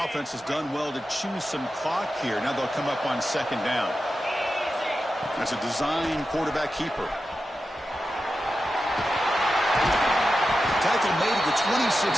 offense has done well to choose some clock here. Now they'll come up on 2nd down. That's a design quarterback keeper. Tackle made at the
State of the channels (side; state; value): both; normal; correlation 0.91